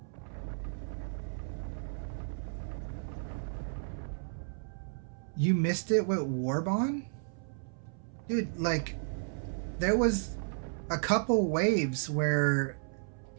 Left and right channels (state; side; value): silent; left; 55 dB below the other